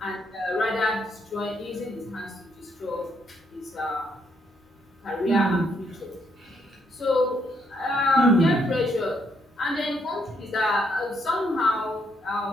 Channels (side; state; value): both; normal; correlation 0.74